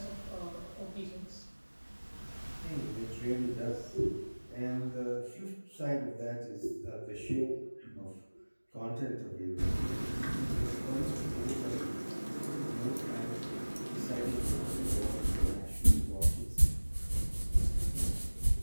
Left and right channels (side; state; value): both; inverted; correlation -1.00